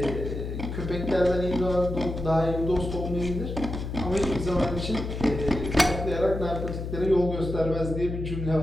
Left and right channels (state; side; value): noise; left; hum, 5 dB below the sound